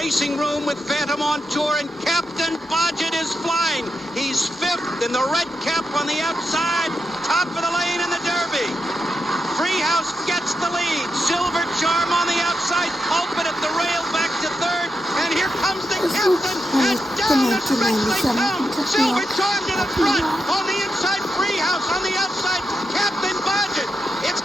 room with Phantom on Tour, and Captain Bodgett is flying. He's fifth in the red cap on the outside, top of the lane in the Derby. Treehouse gets the lead. Silver Charm on the outside. Pulpit at the rail back to third. And here comes the captain. And down the stretch they come. Silver Charm to the front. On the inside, Treehouse. On the outside, Captain Bodgett. It's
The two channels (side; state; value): both; normal; correlation 0.86